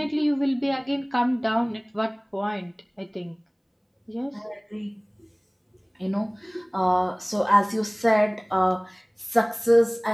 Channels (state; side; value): identical; both; correlation 1.00